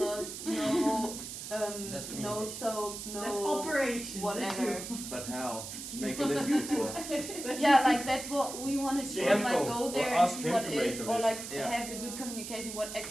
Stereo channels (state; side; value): noise; right; hiss, 8 dB below the sound